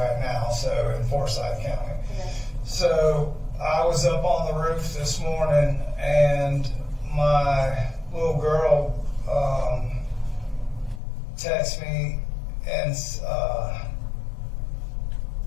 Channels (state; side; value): drops out; right; at 11.0 s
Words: now, so in Forsyth County. Okay. So I was up on the roof this morning, and my little girl texted me and